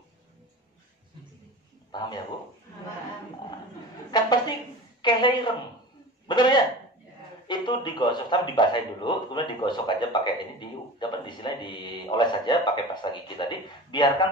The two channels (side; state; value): both; normal; correlation 0.34